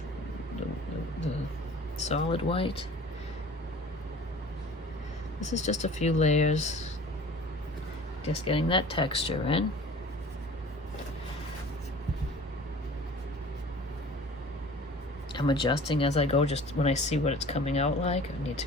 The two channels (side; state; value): both; normal; correlation 0.44